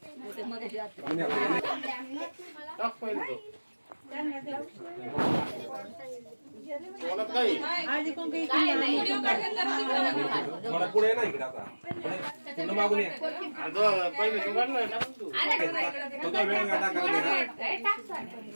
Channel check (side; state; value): both; inverted; correlation -1.00